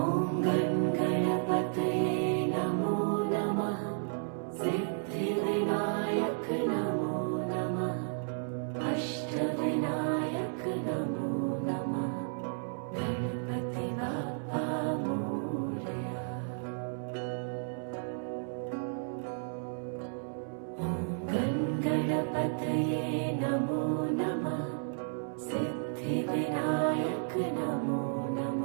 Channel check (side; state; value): left; silent; 56 dB below the other